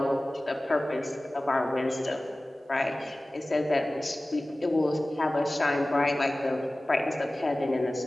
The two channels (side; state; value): both; normal; correlation 0.97